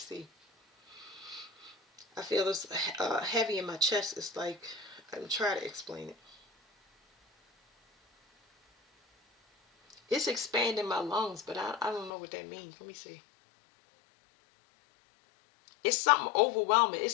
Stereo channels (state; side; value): drops out; right; at 12.1 s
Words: I feel this heavy in my chest. It's like I'm trying to explain it. It's expanding my lungs, but I don't know what that means. Let me see. It's something overwhelming.